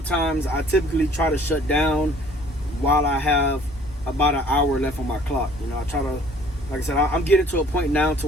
times I typically try to shut down while I have about an hour left on my clock. You know, I try to, like I said, I'm getting to a point now to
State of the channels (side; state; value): both; normal; correlation 0.55